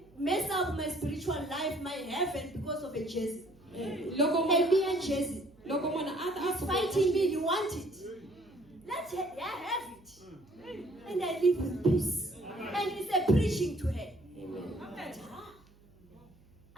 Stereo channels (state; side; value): noise; right; hum, 27 dB below the sound